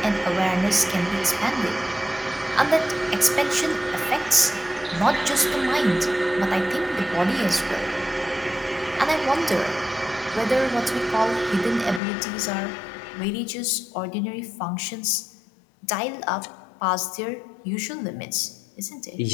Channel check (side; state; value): right; drops out; at 12.0 s